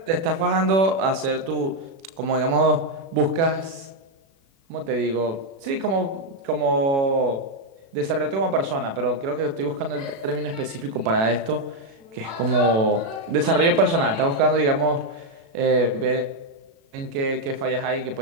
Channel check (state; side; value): late; left; 36 ms